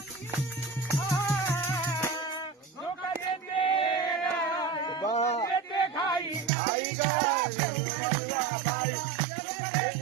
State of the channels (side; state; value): left; drops out; at 6.5 s